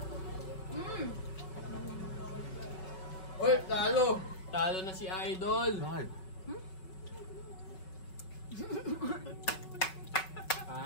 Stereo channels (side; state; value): right; late; 5.3 ms